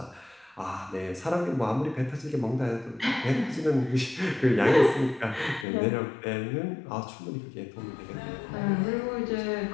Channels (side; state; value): right; drops out; at 5.7 s